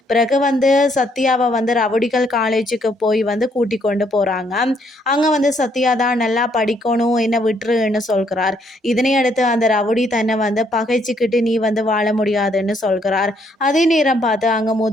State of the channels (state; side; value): normal; both; correlation 0.70